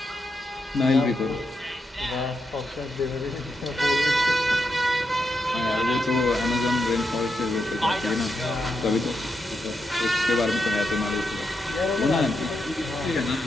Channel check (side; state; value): both; normal; correlation 0.84